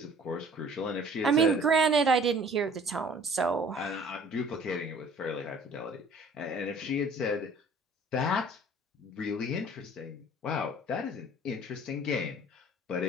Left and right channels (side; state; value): both; normal; correlation 0.51